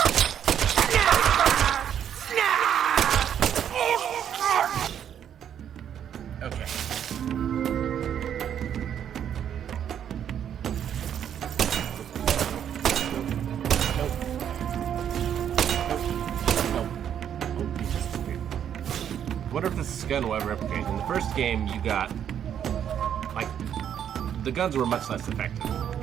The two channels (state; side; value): quieter; left; 9.3 dB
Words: I wonder if this gun will ever replicate. In the first game, you got, like, the guns were much less effective,